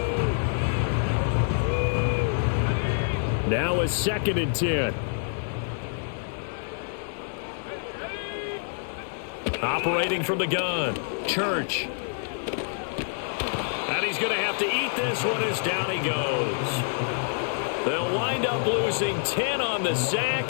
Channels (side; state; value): right; silent; 60 dB below the other